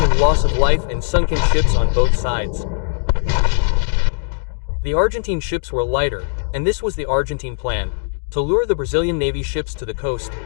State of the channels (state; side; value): silent; right; digital silence